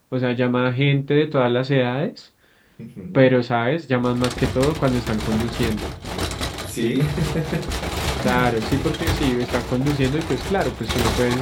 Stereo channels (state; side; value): identical; both; correlation 1.00